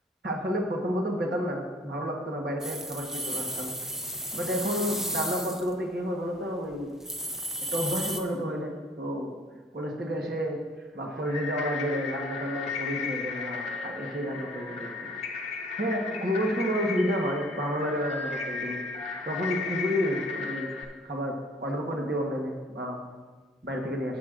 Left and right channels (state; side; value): normal; both; correlation 0.53